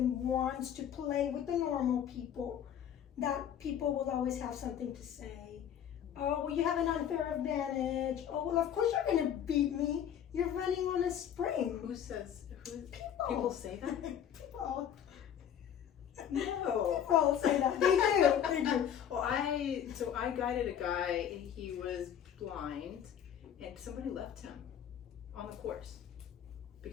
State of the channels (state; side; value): quieter; right; 9.3 dB